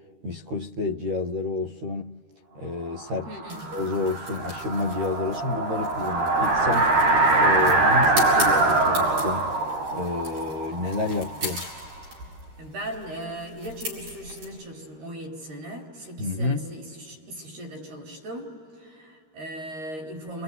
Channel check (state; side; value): late; left; 13 ms